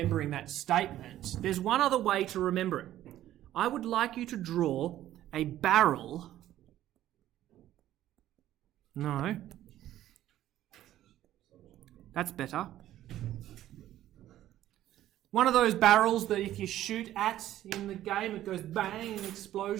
that statement, there's one other way to remember it. I would like you to draw a barrel. No. That's better. One of those barrels that if you shoot at in the game, it goes bang and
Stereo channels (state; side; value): quieter; left; 13.2 dB